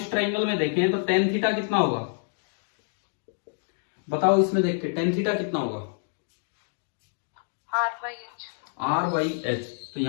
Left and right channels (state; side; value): silent; right; digital silence